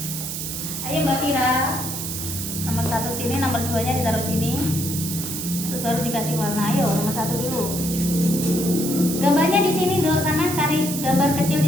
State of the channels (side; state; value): right; noise; hiss, 5 dB below the sound